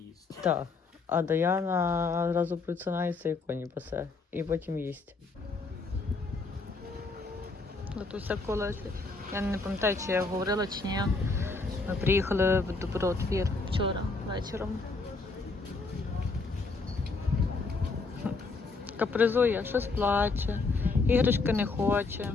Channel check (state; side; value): quieter; right; 3.8 dB